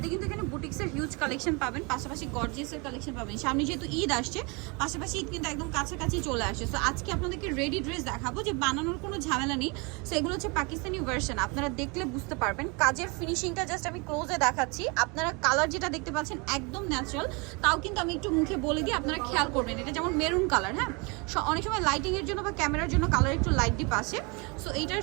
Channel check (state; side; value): quieter; left; 29.9 dB